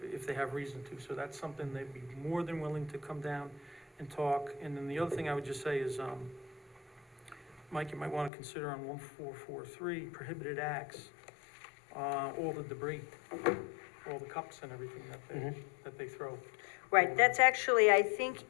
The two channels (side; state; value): right; drops out; at 8.3 s